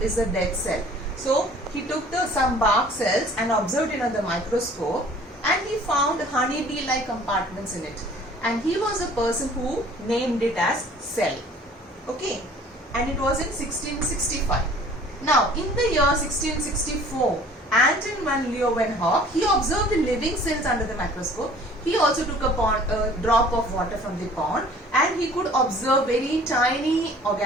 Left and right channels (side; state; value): both; normal; correlation 0.51